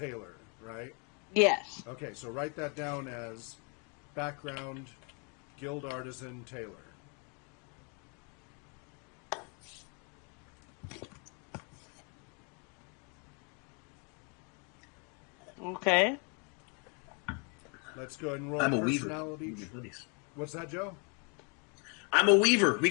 right? Yes. Okay, so write that down as background, guild artisan, tailor. Okay. Let's go ahead and roll I'm a weaver. personality. We can be buddies. What's that, Joe? I'm a weaver. We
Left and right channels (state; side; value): quieter; right; 35.6 dB